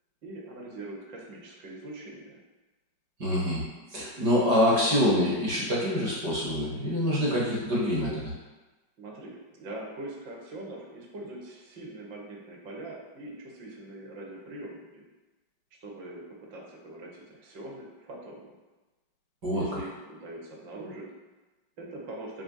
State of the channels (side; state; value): left; late; 5.1 ms